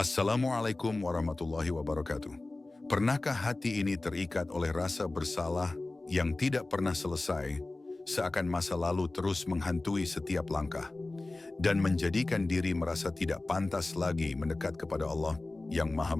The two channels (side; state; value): right; quieter; 3.0 dB